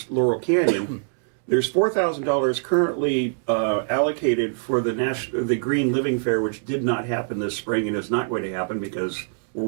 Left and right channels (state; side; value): silent; left; digital silence